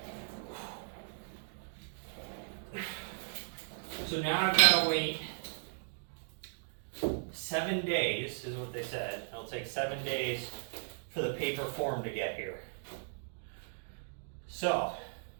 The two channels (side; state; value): left; silent; digital silence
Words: So now I've got to wait 7 days, is what they said. It'll take 7 days for the paper form to get here. So,